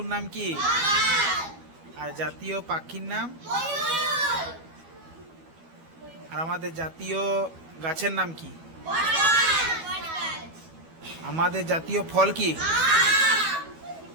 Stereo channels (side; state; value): left; late; 12 ms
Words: নাম কি? আর জাতীয় পাখির নাম? আর আমাদের জাতীয় গাছের নাম কি? আমাদের জাতীয় ফল কি?